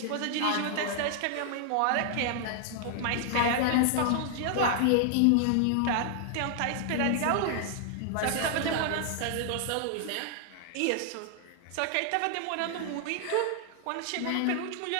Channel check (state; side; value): different; both; correlation 0.00